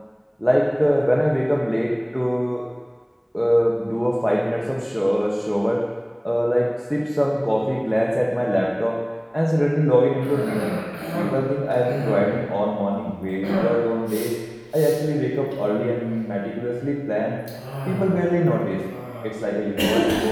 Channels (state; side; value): identical; both; correlation 1.00